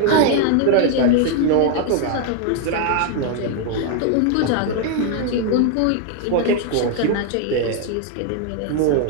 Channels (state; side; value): different; both; correlation 0.00